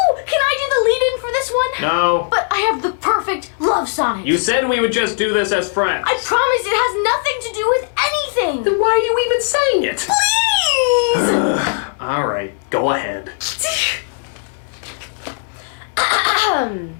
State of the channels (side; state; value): right; silent; digital silence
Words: Can I do the lead-in for this one? No. But I have the perfect love sonnet. You said we would just do this as friends. I promise it has nothing to do with anything. Then why are you even saying it? Please! All right, go ahead. Damn